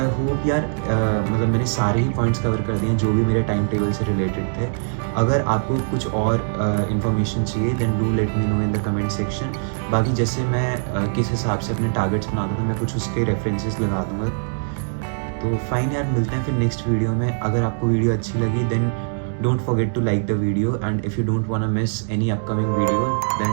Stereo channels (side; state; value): left; silent; digital silence